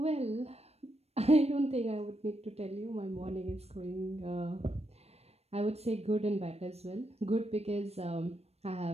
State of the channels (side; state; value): left; late; 0.30 ms